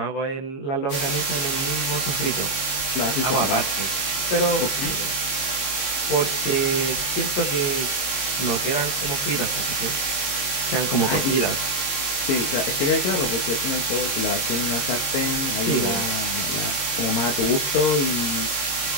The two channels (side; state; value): right; late; 22 ms